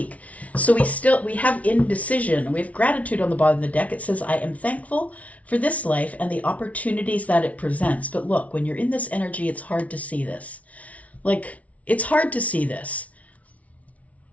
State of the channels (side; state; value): right; late; 0.067 ms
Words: So we have indecision. We have gratitude on the bottom of the deck. It says, I am thankful for this life and the opportunities that it presents. But look, when you're in this energy, it's hard to see this. Like, it's hard to see this.